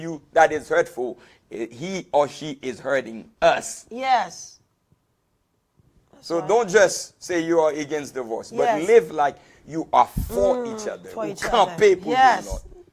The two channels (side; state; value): both; identical; correlation 1.00